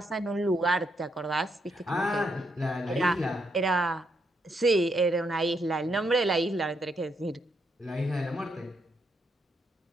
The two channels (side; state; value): both; normal; correlation 0.77